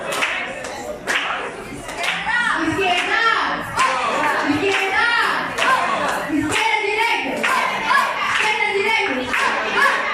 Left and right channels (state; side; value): identical; both; correlation 1.00